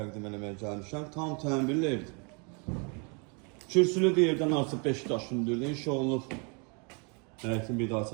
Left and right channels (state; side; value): quieter; left; 34.2 dB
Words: eləməyə gəlmişəm. Tam təmirli evdir. Kürsülü yerdən artıq 5 daş hündürlüyü inşa olunub. Həyətin bir daha